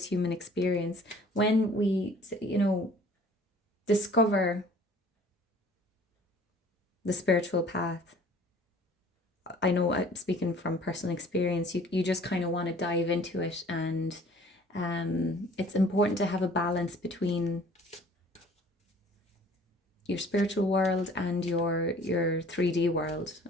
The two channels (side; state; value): both; normal; correlation 0.52